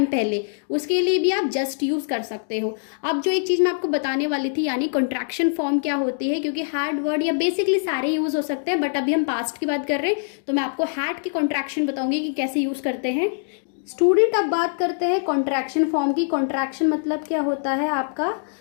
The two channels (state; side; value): silent; right; digital silence